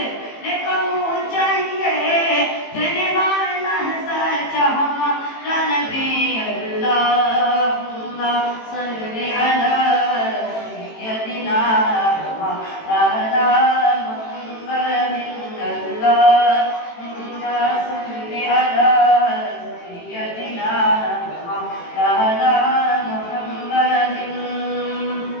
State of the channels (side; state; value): right; late; 18 ms